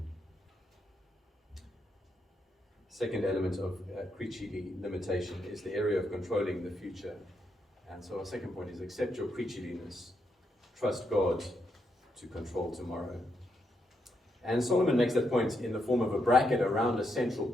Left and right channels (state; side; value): normal; both; correlation 0.80